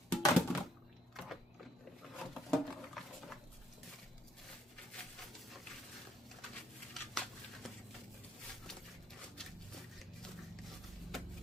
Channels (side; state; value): both; normal; correlation 0.68